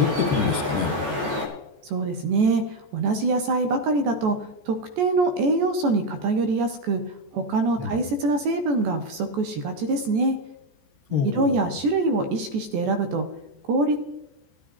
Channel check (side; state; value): left; late; 14 ms